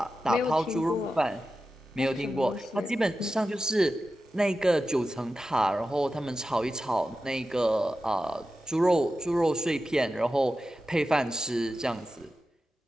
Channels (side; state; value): both; normal; correlation 0.92